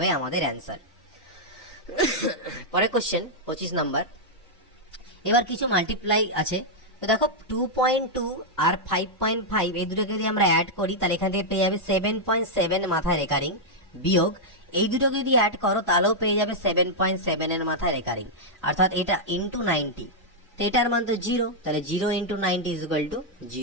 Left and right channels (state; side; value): normal; both; correlation -0.05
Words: আমাদের অ্যান্সার। পরের কোশ্চেন 25 নাম্বার। এবার কিছু মাল্টিপ্লাই আছে, তো দেখো 2.2 আর 5.5 এই দুটোকে যদি আমরা অ্যাড করি, তাহলে এখান থেকে পেয়ে যাবে 7.7 মাথায় রেকারিং, বিয়োগ এই দুটোকে যদি অ্যাড করো তাহলেও পেয়ে যাবে 7.7 এর মাথায় রেকারিং, অর্থাৎ এটা ইন্টু 90, তো এটার মান তো 0, তাহলে 0 ইন্টু 90 ইজ ইকুয়াল টু